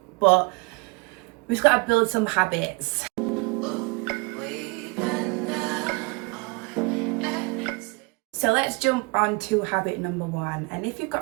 but we've got to build some habits. So let's jump on to habit number one. And if you've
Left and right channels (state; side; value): quieter; left; 28.3 dB